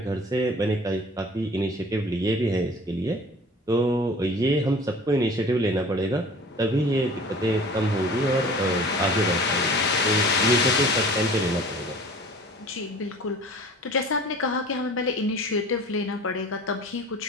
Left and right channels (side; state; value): both; normal; correlation 0.44